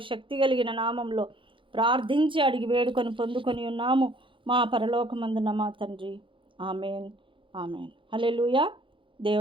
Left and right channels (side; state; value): left; late; 0.25 ms